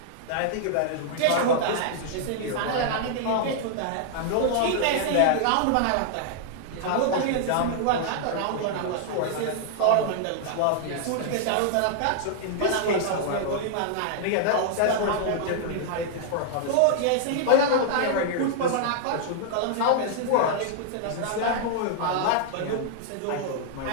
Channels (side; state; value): both; different; correlation -0.01